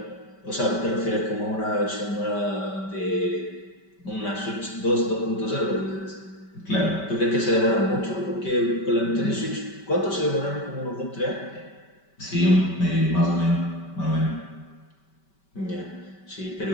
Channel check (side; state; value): right; late; 5.2 ms